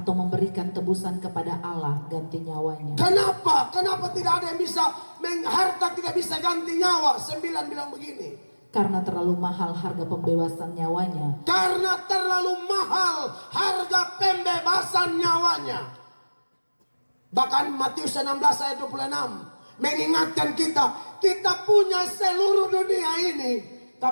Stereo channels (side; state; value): both; inverted; correlation -1.00